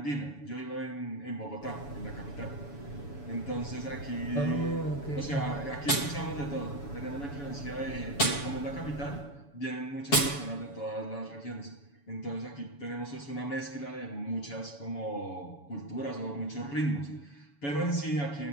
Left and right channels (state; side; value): late; right; 7.0 ms